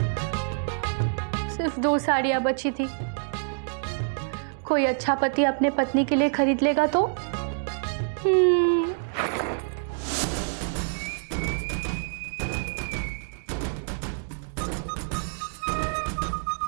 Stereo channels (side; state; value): left; silent; digital silence